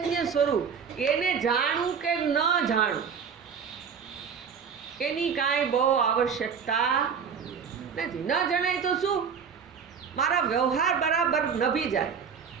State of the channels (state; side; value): quieter; left; 6.7 dB